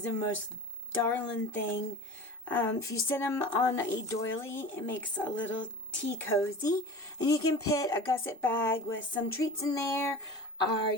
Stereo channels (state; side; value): normal; both; correlation 0.36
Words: the most darling thing. If you sit them on a doily, it makes a little tea cozy. And you can put a gusset bag with some treats in there, or